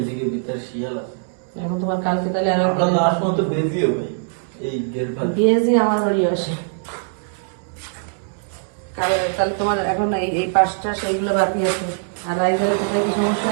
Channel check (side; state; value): left; silent; digital silence